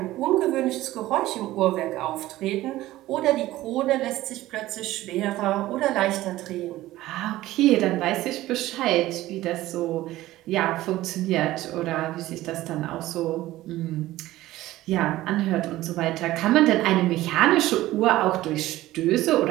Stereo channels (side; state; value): left; quieter; 16.1 dB